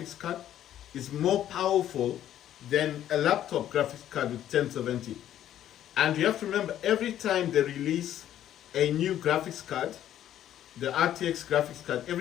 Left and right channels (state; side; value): quieter; right; 11.5 dB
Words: card is more powerful than a laptop graphics card with 1070. And you have to remember, every time they release a new graphics card, the RTX graphics card,